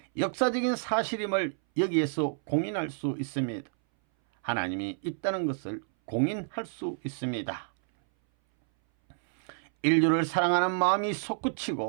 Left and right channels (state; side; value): silent; left; 58 dB below the other